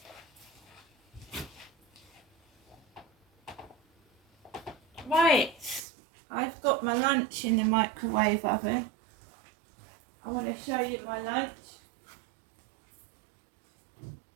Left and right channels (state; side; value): drops out; left; at 5.8 s